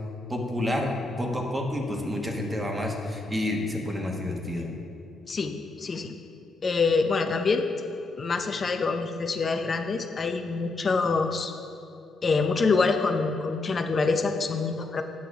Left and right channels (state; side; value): quieter; right; 3.2 dB